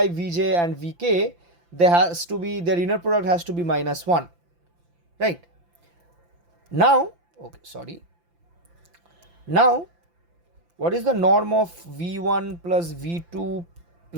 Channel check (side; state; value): left; late; 5.8 ms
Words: Vj and Vk, their inner product has to be minus 1. Right? Now, now what is the norm of v1 plus v2